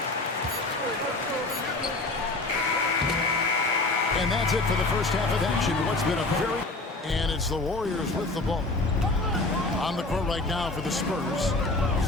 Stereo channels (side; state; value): right; quieter; 3.2 dB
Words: And that's it for the first half of action. What's been a very... And it's the Warriors with the ball. On the court right now for the Spurs.